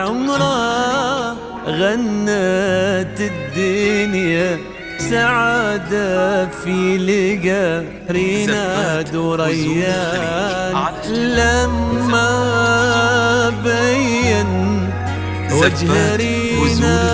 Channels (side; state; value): both; identical; correlation 1.00